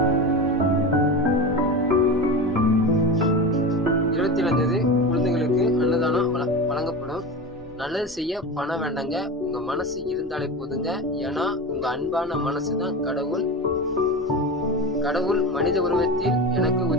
27 குழந்தைகளுக்கு அன்னதானம் வழங்கப்படும். நல்லது செய்ய பண்ண வேண்டாங்க. உங்க மனசு இருந்தாலே போதுங்க. ஏன்னா உங்க அன்பான மனசுதான் கடவுள். கடவுள் மனித உருவத்தில் எனக்கு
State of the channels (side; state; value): both; normal; correlation 0.25